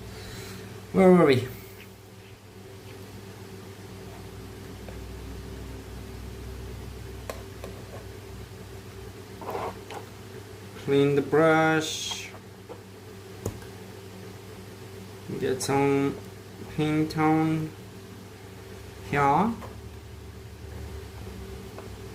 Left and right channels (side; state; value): both; identical; correlation 1.00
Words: Where were we? Clean the brush. Get some paint on here.